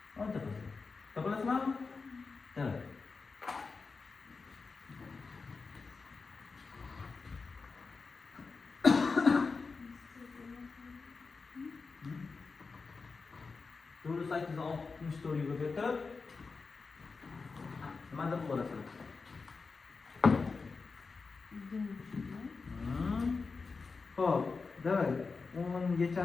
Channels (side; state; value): right; quieter; 4.5 dB